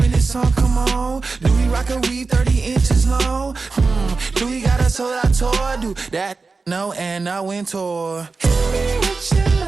this song? Come on. Do we rock a weave 30 inches long? Do we got a sold out tour? Do that? No, and I went tour.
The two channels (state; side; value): quieter; left; 4.2 dB